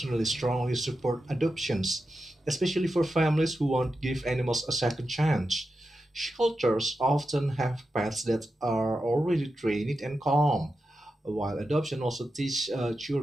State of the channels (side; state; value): both; normal; correlation 0.90